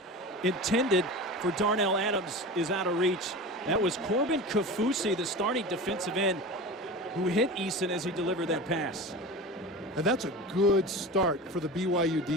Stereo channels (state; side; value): normal; both; correlation 0.31